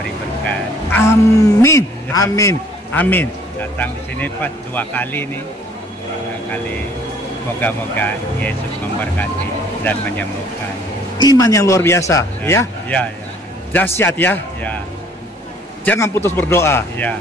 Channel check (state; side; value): normal; both; correlation 0.58